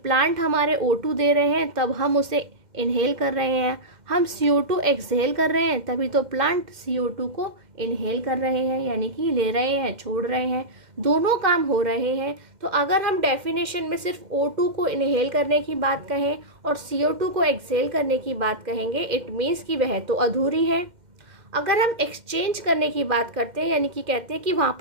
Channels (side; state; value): left; late; 2.1 ms